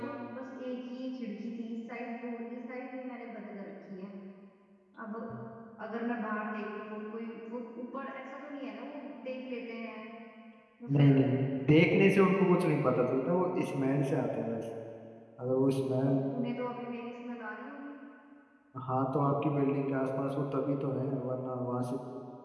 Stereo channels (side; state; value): both; identical; correlation 1.00